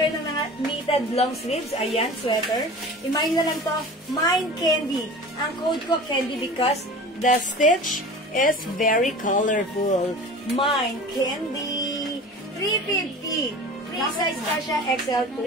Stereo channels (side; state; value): both; normal; correlation 0.38